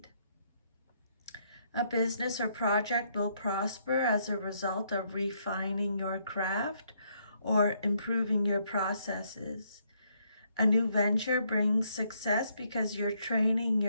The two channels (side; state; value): both; inverted; correlation -0.72